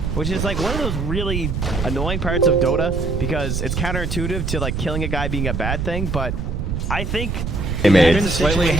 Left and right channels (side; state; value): right; noise; rumble, 2 dB below the sound